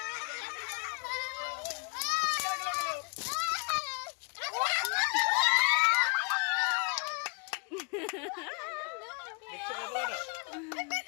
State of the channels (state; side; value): quieter; right; 33.6 dB